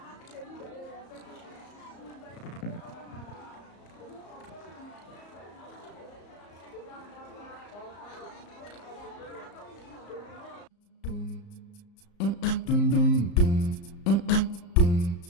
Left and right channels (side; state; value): right; late; 34 ms